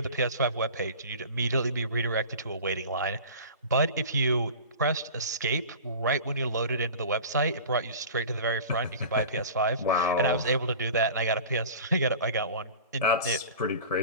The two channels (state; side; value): inverted; both; correlation -0.38